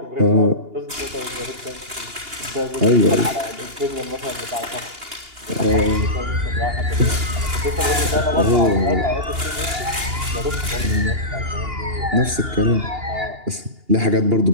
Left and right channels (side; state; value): left; late; 2.8 ms